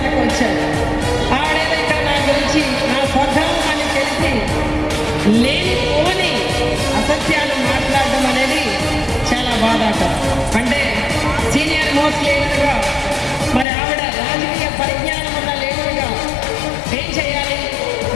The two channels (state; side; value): drops out; right; at 13.7 s